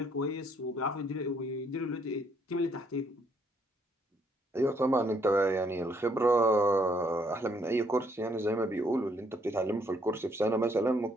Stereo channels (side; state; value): both; normal; correlation 0.69